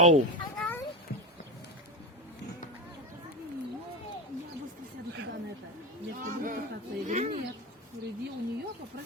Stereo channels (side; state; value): both; normal; correlation 0.20